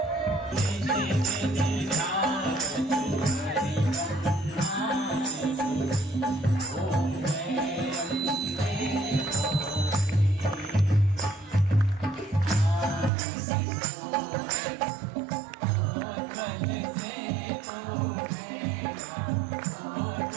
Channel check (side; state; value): left; drops out; at 13.1 s